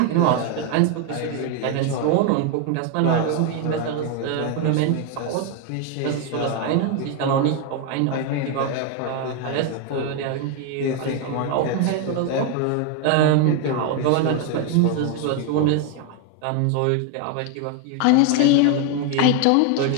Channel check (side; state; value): both; different; correlation 0.01